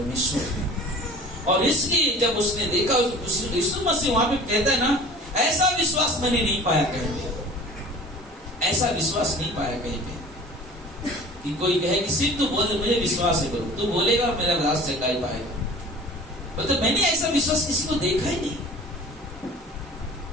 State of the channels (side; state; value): both; normal; correlation 0.43